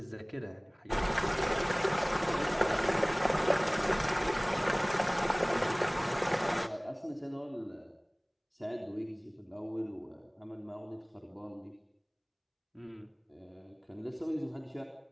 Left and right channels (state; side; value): identical; both; correlation 1.00